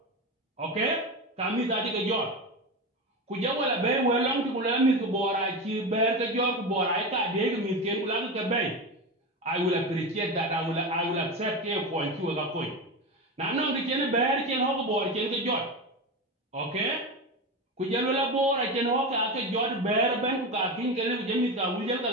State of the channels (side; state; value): both; normal; correlation 0.20